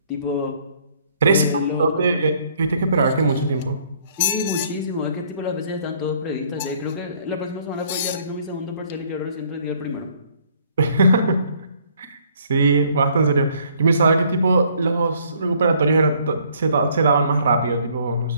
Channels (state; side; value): inverted; both; correlation -0.62